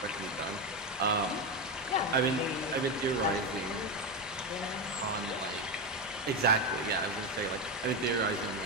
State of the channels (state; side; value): normal; both; correlation 0.12